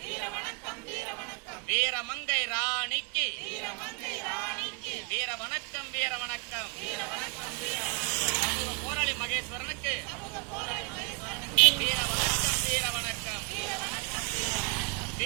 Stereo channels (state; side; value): quieter; left; 34.4 dB